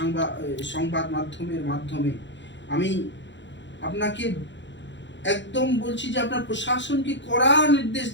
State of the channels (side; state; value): right; late; 0.53 ms